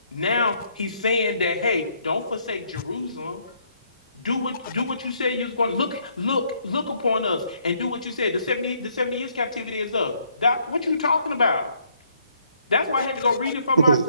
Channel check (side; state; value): both; inverted; correlation -0.70